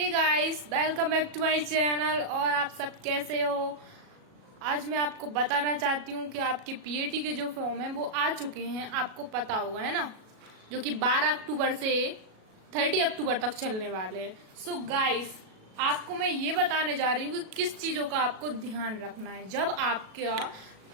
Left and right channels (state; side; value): late; left; 37 ms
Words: guys, welcome back to my channel. और आप सब कैसे हो? आज मैं आपको बताना चाहती हूँ कि आपके पीएटी के जो फॉर्म है वो आ चुके हैं। आपको पता होगा, है ना, जो कि 12 अक्टूबर से 30 अक्टूबर तक चलने वाले हैं। सो गाइस, आपको मैं ये बताने जा रही हूँ कि किस चीजों का आपको ध्यान रखना है। जब आपका